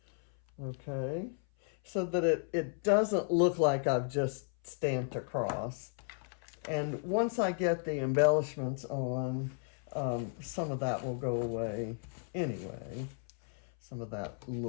Okay, so that it doesn't look like I've just stamped across. And once I get the embellishments on, some of that will go away anyway. Some of that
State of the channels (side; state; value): right; silent; 55 dB below the other